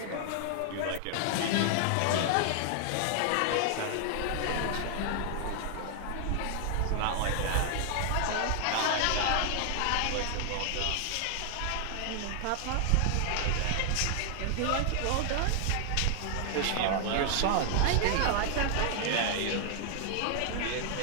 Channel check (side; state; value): both; different; correlation 0.00